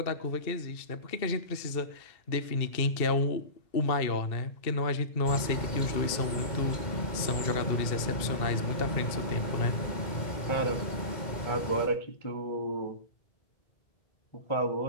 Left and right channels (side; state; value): right; late; 2.7 ms